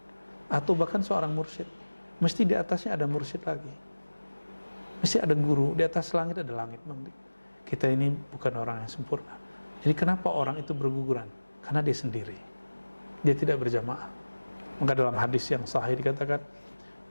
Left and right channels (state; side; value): inverted; both; correlation -1.00